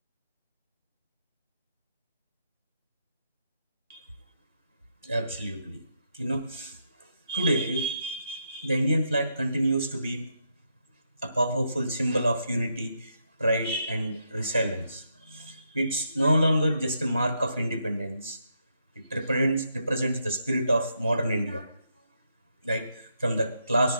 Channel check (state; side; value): inverted; both; correlation -0.80